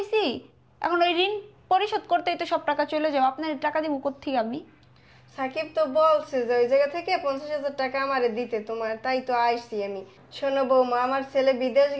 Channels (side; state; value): both; identical; correlation 1.00